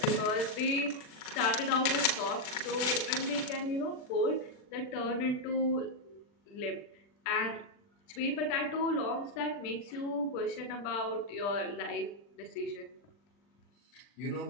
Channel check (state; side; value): late; right; 40 ms